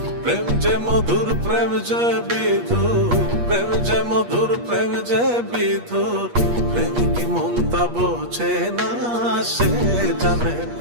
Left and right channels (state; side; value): late; left; 8.4 ms